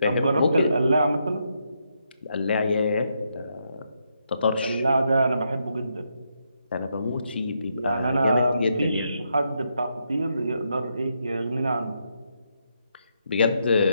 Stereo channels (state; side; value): inverted; both; correlation -0.80